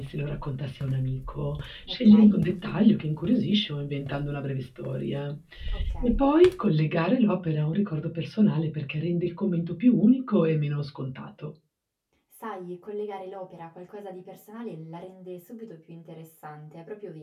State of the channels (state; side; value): identical; both; correlation 1.00